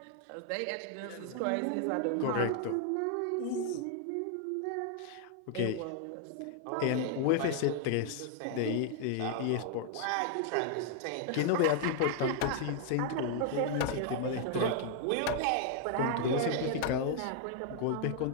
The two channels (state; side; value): different; both; correlation 0.00